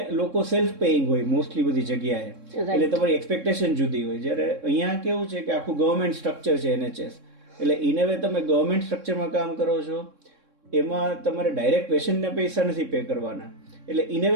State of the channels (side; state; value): left; late; 3.6 ms